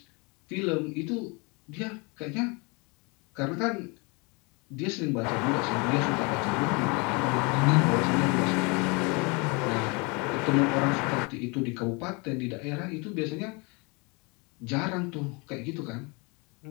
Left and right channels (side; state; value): right; quieter; 29.8 dB